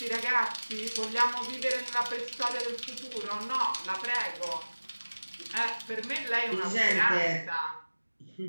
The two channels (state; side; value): inverted; both; correlation -1.00